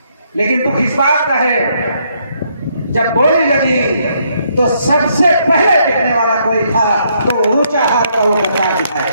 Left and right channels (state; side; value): inverted; both; correlation -0.73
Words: लेकिन दुख इस बात का है, जब बोली लगी तो सबसे पहले दिखने वाला कोई था तो ऊंचा हाथ का वो बता दिखाए।